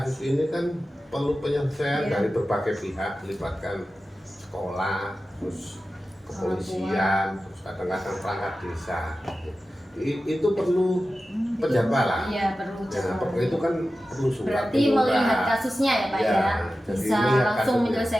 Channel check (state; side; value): normal; both; correlation 0.94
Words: ini kan perlu penyelesaian dari berbagai pihak, melibatkan sekolah, terus kepolisian, terus kadang-kadang perangkat desa. Itu perlu penjadwalan. Iya, perlu. Ya, itu kan perlu surat. Berarti melihat kasusnya ya Pak ya. Bisa langsung kasusnya